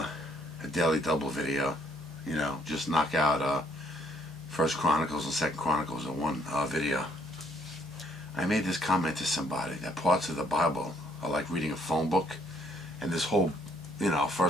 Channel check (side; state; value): both; normal; correlation 0.68